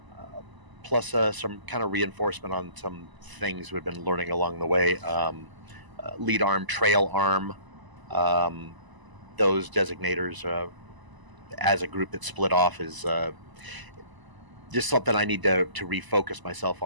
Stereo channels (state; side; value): late; left; 1.0 ms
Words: plus some kind of reinforcement on some things we've been learning along the way. Lead arm, trail arm, those designators as a group that split off is just something I need to refocus myself